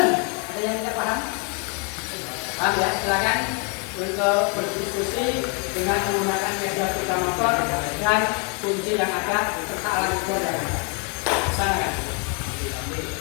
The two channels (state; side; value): quieter; right; 36.1 dB